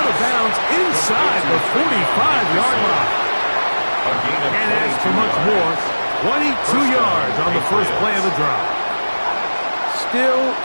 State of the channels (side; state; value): both; inverted; correlation -1.00